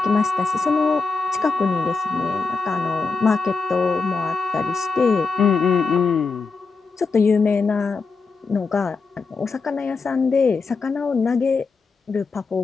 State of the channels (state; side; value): quieter; right; 4.5 dB